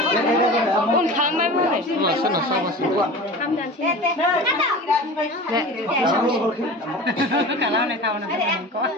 Un kamar mana? Sana sama sih. Kamdan sini. Kalau nak tahu nak kau.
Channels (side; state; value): both; normal; correlation 0.35